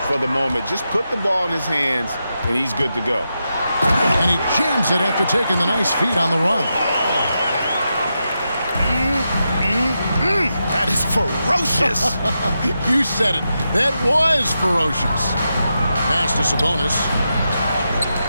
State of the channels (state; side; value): inverted; both; correlation -0.87